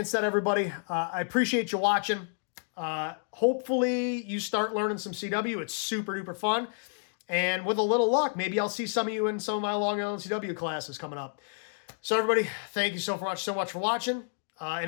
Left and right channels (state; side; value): silent; right; digital silence